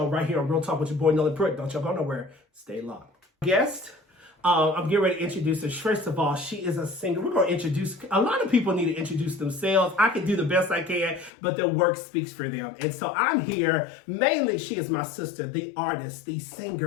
right here on Real Talk with your boy, Noland Pruitt. Don't y'all go nowhere. Stay locked. Guest, I'm getting ready to introduce her. First of all, she is a singer. We're going to introduce, a lot of people need to introduce themselves. I can do the best I can, but their work speaks for them. And so I'm here, mainly she is my sister, the artist, the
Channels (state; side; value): drops out; right; at 11.3 s